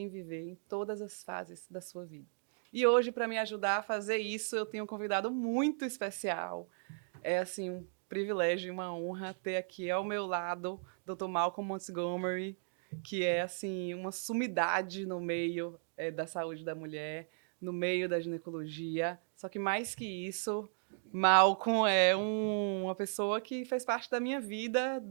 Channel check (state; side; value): silent; left; digital silence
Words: viver em todas as fases da sua vida. E hoje, para me ajudar a fazer isso, eu tenho um convidado muito especial. É, assim, um privilégio e uma honra ter aqui ao meu lado Dr. Malcolm Montgomery, que é, assim, uma sumidade no meio da saúde da mulher, no meio da ginecologia. Só que mais que isso, Malcolm é uma pessoa que fez parte da minha vida